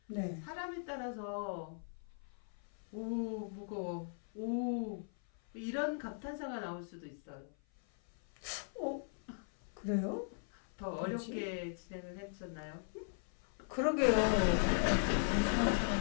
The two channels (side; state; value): right; silent; 52 dB below the other